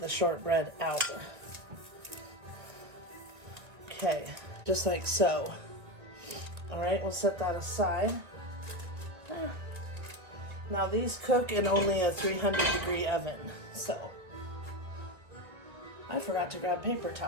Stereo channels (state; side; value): late; left; 1.9 ms